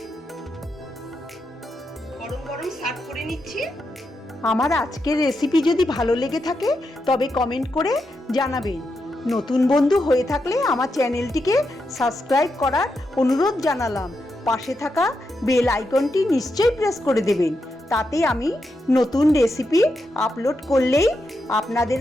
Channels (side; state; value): both; normal; correlation 0.85